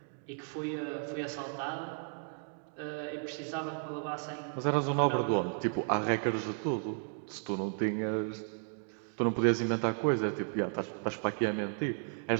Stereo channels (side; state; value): left; silent; 55 dB below the other